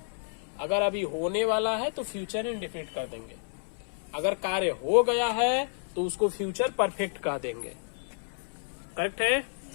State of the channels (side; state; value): right; silent; 58 dB below the other